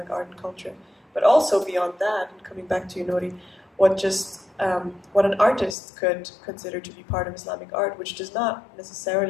art and culture. But also beyond that, and coming back to you, Nori, what an artist could consider to be part of Islamic art, which does not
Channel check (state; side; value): drops out; right; at 5.8 s